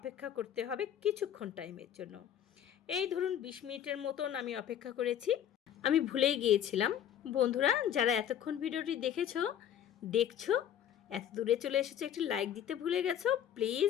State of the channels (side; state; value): right; quieter; 10.0 dB